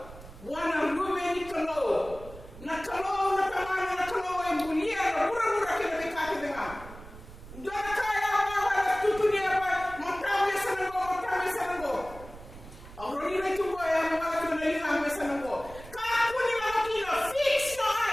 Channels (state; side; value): noise; right; rumble, 16 dB below the sound